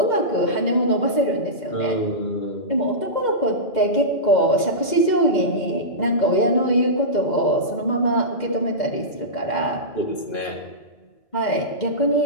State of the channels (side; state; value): right; late; 2.1 ms